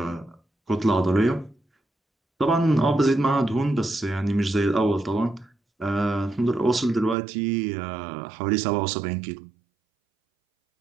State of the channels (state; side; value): drops out; left; at 7.2 s